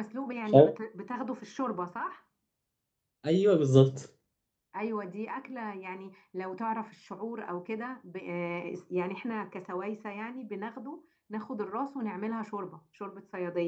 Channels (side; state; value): both; identical; correlation 1.00